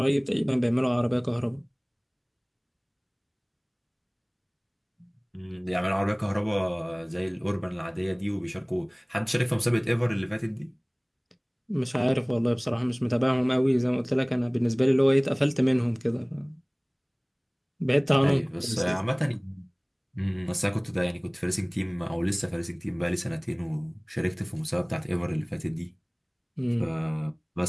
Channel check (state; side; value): identical; both; correlation 1.00